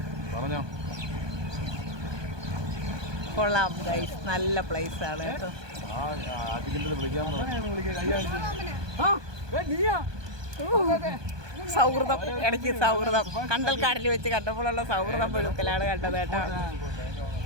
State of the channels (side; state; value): left; late; 1.2 ms